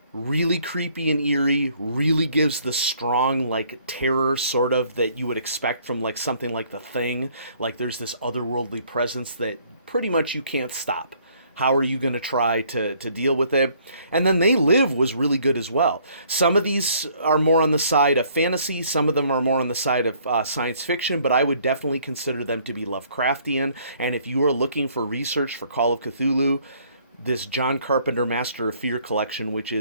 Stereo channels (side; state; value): both; inverted; correlation -0.62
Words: really creepy and eerie, really gives the strong, like, terror sort of that you would expect from, like, something like The Thing. Like, there's this otherworldly presence that pretty much you can't stop. How are you going to try to deal with it? And then They Live was really good as well. Some of these are more on the side of fantasy, some of them are more on the side of science fiction, but I would definitely consider them to be Lovecraftian. And if you are looking for research for Call of Cthulhu, this John Carpenter Master of Fear collection, which